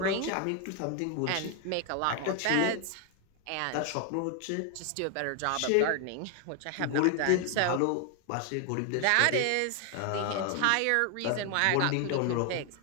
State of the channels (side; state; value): both; different; correlation 0.00